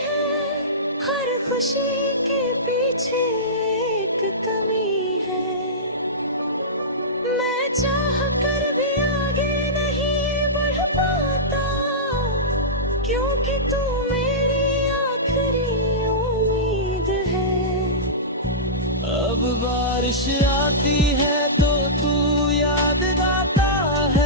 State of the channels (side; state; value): both; normal; correlation -0.17